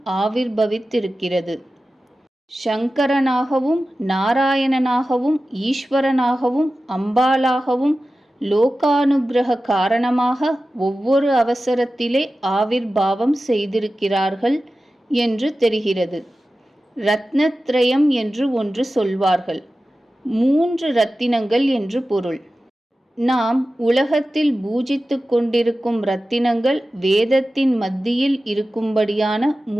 ஆவிர்பவித்திருக்கிறது. சங்கரனாகவும் நாராயணனாகவும் ஈஸ்வரனாகவும் அம்பாளாகவும் லோகானுக்கிரக காரணமாக ஒவ்வொரு அவசரத்திலே ஆவிர்பாவம் செய்திருக்கிறார்கள் என்று தெரிகிறது. ரத்னத்ரயம் என்று ஒன்று சொல்வார்கள். 3 ரத்தினங்கள் என்று பொருள். நாம் உலகத்தில் பூஜித்து கொண்டிருக்கும் ரத்தினங்கள் வேதத்தின் மத்தியில் இருக்கும்படியான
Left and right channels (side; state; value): both; normal; correlation 0.94